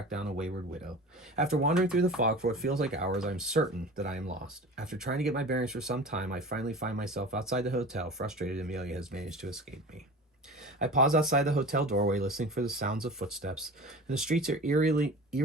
down a wayward widow. After wandering through the fog for what feels like hours, I'm certain that I am lost. After trying to get my bearings for some time, I finally find myself outside the hotel, frustrated Amelia has managed to escape me. I pause outside the hotel doorway, listening for the sounds of footsteps, and the streets are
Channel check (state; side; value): normal; both; correlation 0.36